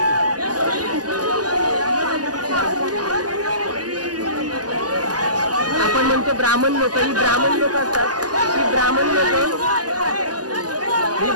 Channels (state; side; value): late; left; 0.68 ms